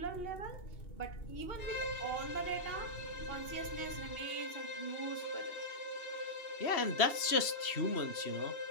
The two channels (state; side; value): late; right; 2.8 ms